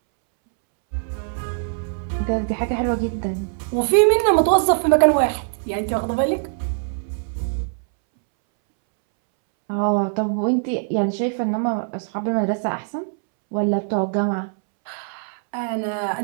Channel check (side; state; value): left; silent; 64 dB below the other